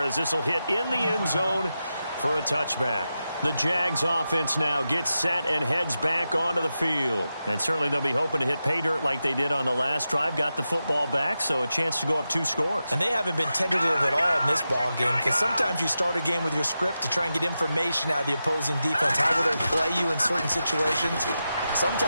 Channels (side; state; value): both; inverted; correlation -0.90